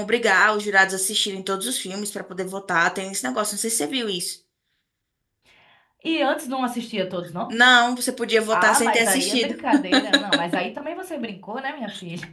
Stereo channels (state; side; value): identical; both; correlation 1.00